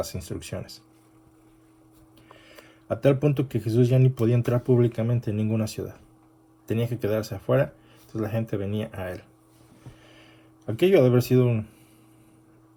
instrucciones. A tal punto que Jesús ya ni podía entrar públicamente en ninguna ciudad. Tenía que quedarse afuera, entonces la gente venía a él. Aquello debe haber sido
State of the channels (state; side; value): identical; both; correlation 1.00